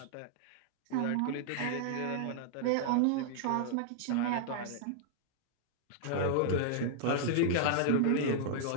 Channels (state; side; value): different; both; correlation -0.01